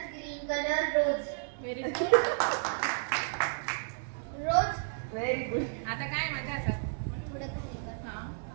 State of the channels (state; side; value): silent; left; digital silence